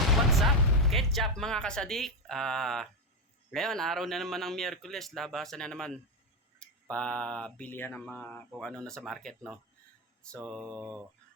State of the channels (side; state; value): both; normal; correlation 0.11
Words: up? Ketchup mga kasadik. Ngayon, araw na naman ng Miyerkules. Labasan na naman. Pabilihan ng mga kung ano na sa market, no? So,